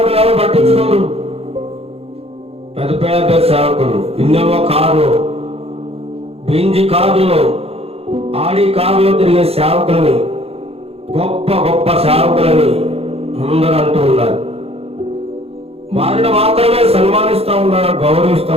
ఎవరు పట్టించుకోరు. పెద్ద పెద్ద సేవకులు ఇన్నోవా కారులో, బెంజి కారులో, ఆడి కారులో తిరిగే సేవకులని, గొప్ప గొప్ప సేవకులని అందరూ అంటూ ఉన్నారు. వారిని మాత్రమే సన్మానిస్తూ ఉన్నారు, గౌరవిస్తూ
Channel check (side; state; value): left; late; 0.29 ms